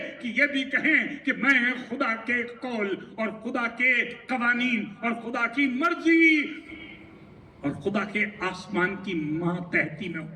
कि ये भी कहें कि मैं खुदा के कौल और खुदा के कवानीन और खुदा की मर्जी और खुदा के आसमान की मातहती में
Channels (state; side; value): identical; both; correlation 1.00